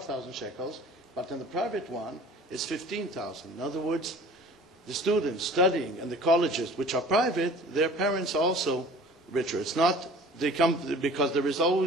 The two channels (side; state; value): both; normal; correlation 0.46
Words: shekels, but in the private one, it's 15,000. In other words, the students studying in the colleges, which are private, their parents are also richer. It's not, they come, because there has